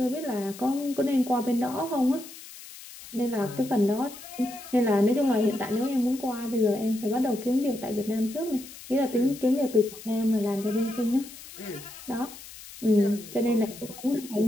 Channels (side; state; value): left; noise; hiss, 16 dB below the sound